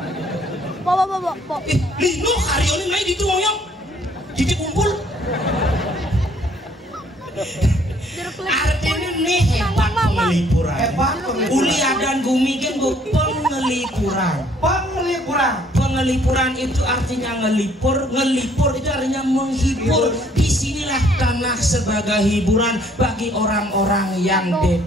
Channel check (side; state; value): both; normal; correlation 0.62